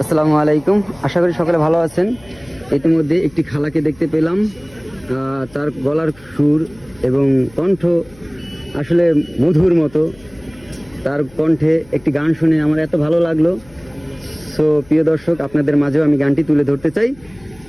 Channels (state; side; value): noise; left; hum, 25 dB below the sound